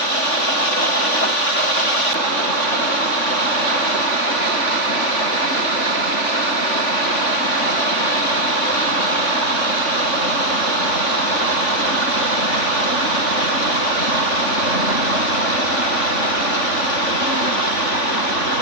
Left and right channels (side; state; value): right; late; 3.5 ms